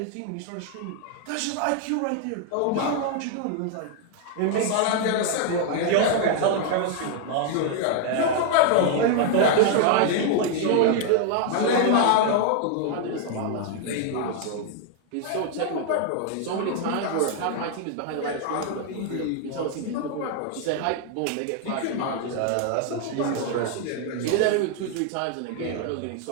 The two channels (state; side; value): different; both; correlation 0.00